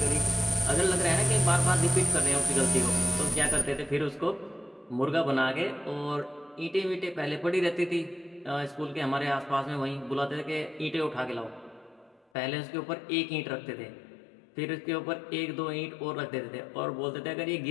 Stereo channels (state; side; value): drops out; right; at 12.2 s